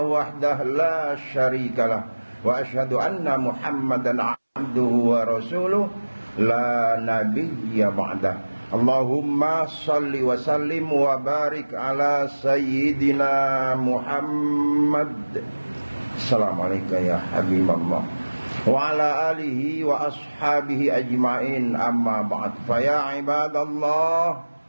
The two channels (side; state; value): both; inverted; correlation -1.00